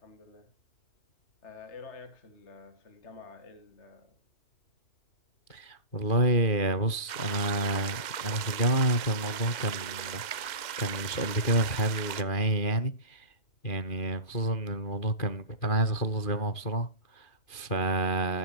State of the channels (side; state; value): right; late; 2.1 ms